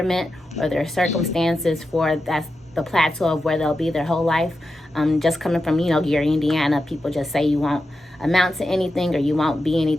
or their circumstances for that's the plateau of where they'll be their whole life. Just coming from, Gary, Indiana, people just say you won't amount to anything or you won't be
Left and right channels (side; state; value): both; normal; correlation 0.89